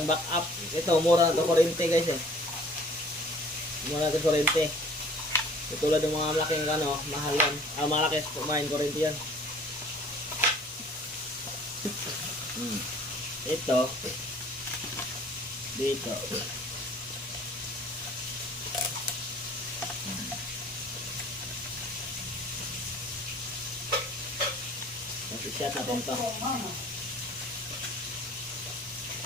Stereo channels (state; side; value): normal; both; correlation 0.52